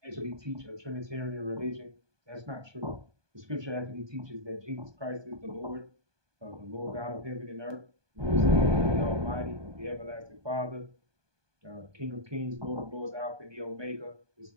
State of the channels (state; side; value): late; left; 1.2 ms